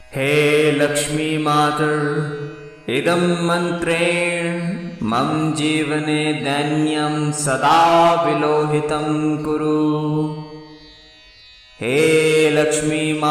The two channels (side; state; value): both; identical; correlation 1.00